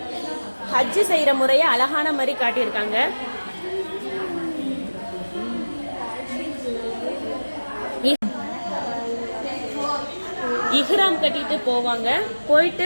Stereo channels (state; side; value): inverted; both; correlation -1.00